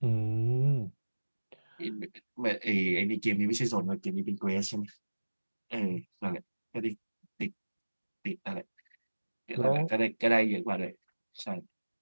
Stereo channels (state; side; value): inverted; both; correlation -1.00